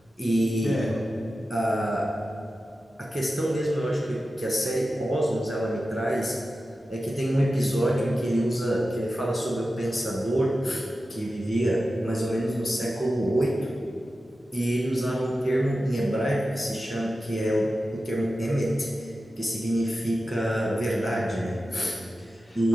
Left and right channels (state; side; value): normal; both; correlation 0.93